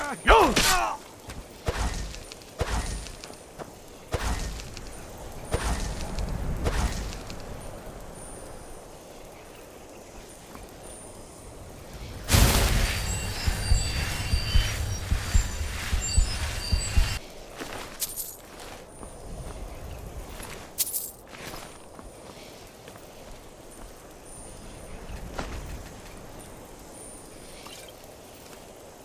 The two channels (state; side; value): identical; both; correlation 1.00